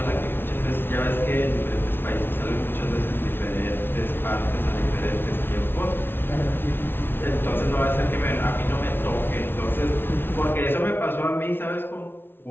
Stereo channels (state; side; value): late; right; 0.11 ms